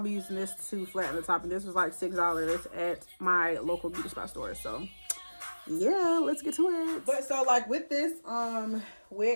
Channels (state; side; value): inverted; both; correlation -1.00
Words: using this to flatten the top. And this was like $6 at my local beauty spot store. So yeah, let's get to it. But so like with this